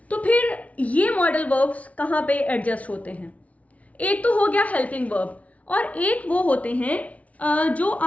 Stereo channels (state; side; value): late; right; 0.067 ms